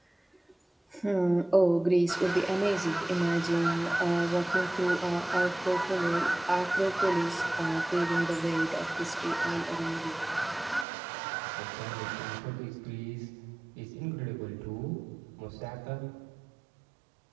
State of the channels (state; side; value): drops out; left; at 10.9 s